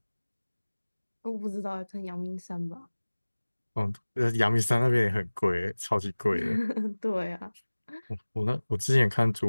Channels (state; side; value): inverted; both; correlation -1.00